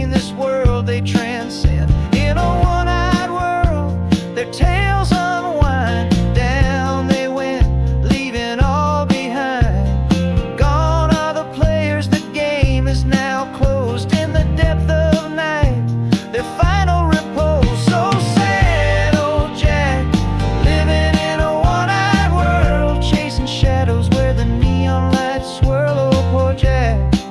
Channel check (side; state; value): both; identical; correlation 1.00